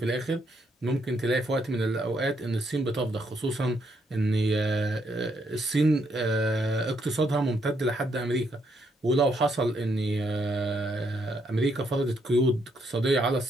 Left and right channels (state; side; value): normal; both; correlation 0.75